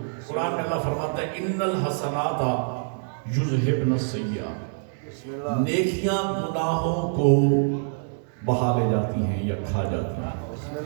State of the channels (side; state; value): left; silent; digital silence